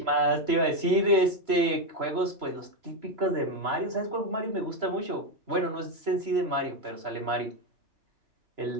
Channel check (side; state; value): left; late; 3.0 ms